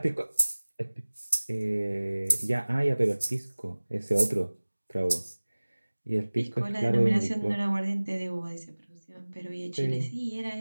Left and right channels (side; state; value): both; inverted; correlation -1.00